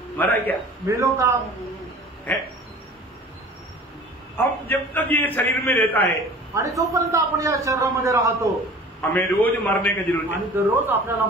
मरा क्या? मेलो का? है हम जब तक ये शरीर में रहता है आणि जोपर्यंत आपण या शरीरामध्ये राहतो हमें रोज मरने की जरूरत है, आणि दररोज आपल्याला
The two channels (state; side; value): normal; both; correlation 0.43